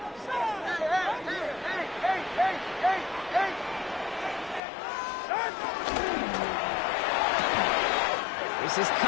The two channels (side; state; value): right; drops out; at 4.6 s